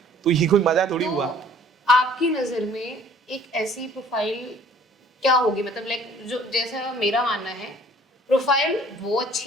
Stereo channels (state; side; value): normal; both; correlation 0.54